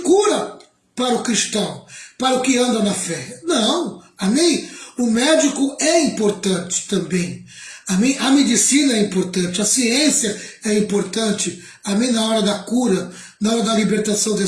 para o cristão, para o que anda na fé. Não, amém? O médico é importante também. Amém? A medicina é importante, a ciência é importante, amém? Na hora da cura, na hora da libertação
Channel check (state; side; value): identical; both; correlation 1.00